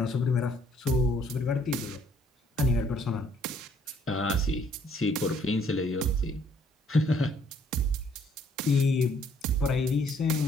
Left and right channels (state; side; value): normal; both; correlation 0.64